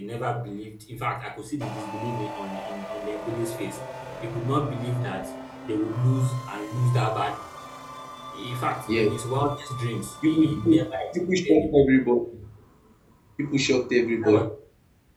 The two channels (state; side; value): identical; both; correlation 1.00